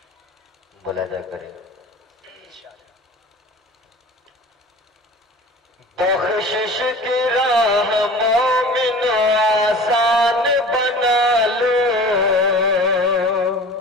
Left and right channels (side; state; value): both; normal; correlation 0.40